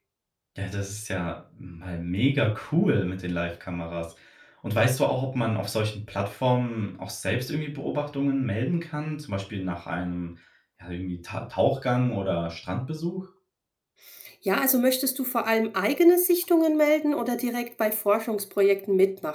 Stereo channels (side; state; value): both; identical; correlation 1.00